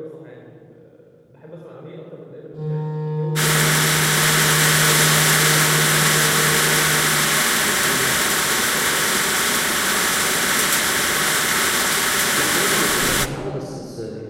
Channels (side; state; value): both; identical; correlation 1.00